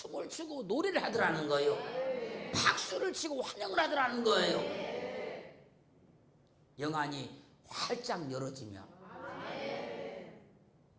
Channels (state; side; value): identical; both; correlation 1.00